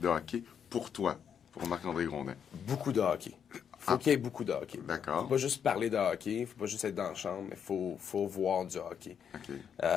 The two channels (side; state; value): right; quieter; 7.8 dB